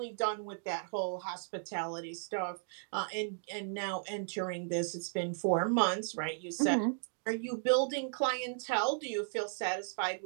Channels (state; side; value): silent; left; digital silence